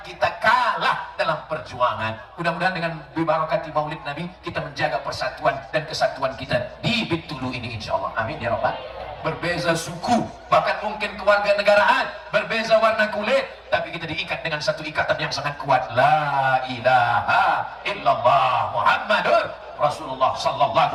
kita kalah dalam perjuangan. Mudah-mudahan dengan bibarakati maulid Nabi, kita menjaga persatuan dan kesatuan kita di Bintulu ini insyaAllah. Amin ya Rabbal. Berbeza suku, bahkan mungkin keluarga negaraan, berbeza warna kulit, tapi kita diikat dengan satu ikatan yang sangat kuat. La ilaha illallah. illallah Muhammadur Rasulullah sallallahu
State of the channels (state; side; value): identical; both; correlation 1.00